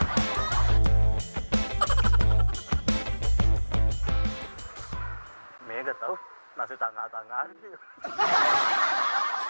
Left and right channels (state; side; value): inverted; both; correlation -1.00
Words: Mega tahu nasi tangga-tangga.